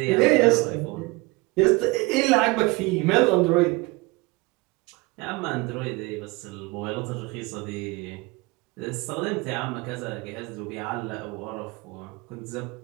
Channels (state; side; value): quieter; left; 24.4 dB